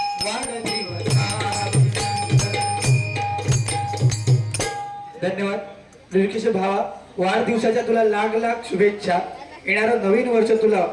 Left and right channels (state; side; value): identical; both; correlation 1.00